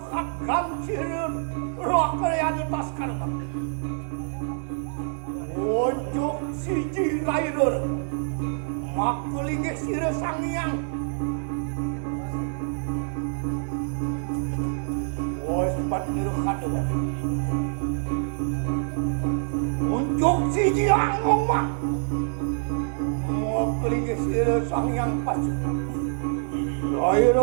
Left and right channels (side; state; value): left; silent; 61 dB below the other